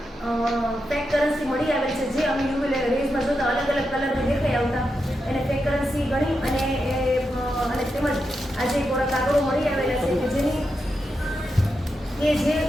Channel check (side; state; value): both; normal; correlation 0.86